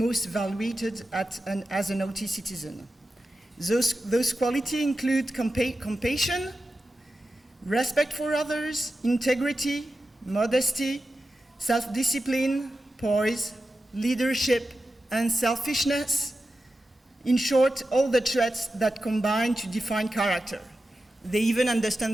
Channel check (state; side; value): normal; both; correlation 0.92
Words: valued as an Awty citizen. Those qualities include compassion, respect for others, integrity, modesty, self-discipline, poise, leadership, and selfishness. In short, all the traits that combine to define character. They even